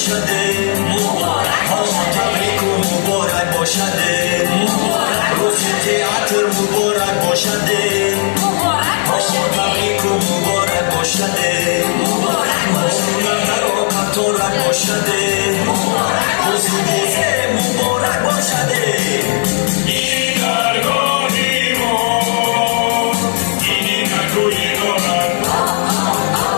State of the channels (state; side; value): silent; right; digital silence